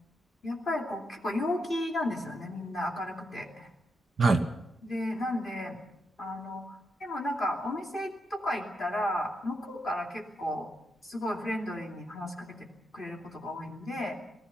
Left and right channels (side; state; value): both; normal; correlation 0.82